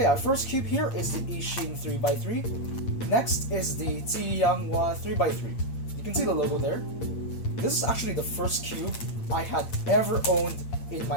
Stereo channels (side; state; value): right; late; 8.7 ms